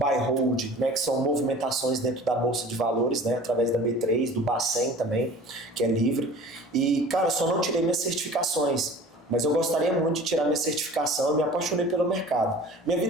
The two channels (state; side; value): normal; both; correlation 0.43